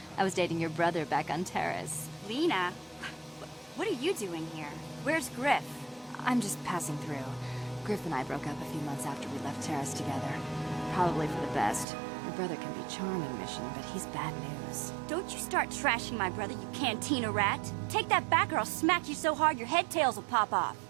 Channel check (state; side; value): drops out; left; at 11.9 s